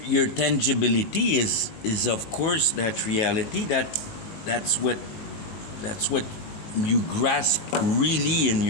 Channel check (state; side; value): late; right; 20 ms